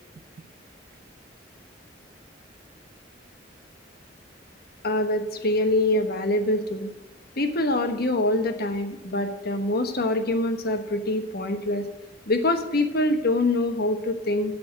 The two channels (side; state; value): both; normal; correlation 0.17